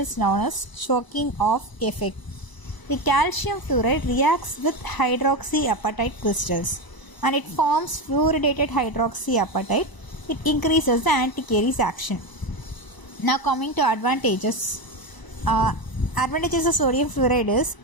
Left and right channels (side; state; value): right; late; 1.0 ms